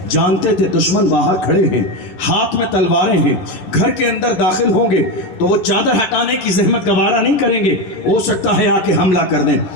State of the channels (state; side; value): late; right; 11 ms